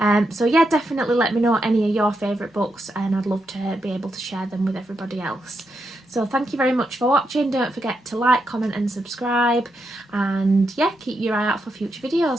So yeah, definitely let me know any of your favourite books, and I'd love to be able to share them with everybody else. So thank you very much for watching. Don't forget to like, comment and subscribe, and yeah, keep your eye out for future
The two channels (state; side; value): normal; both; correlation 0.83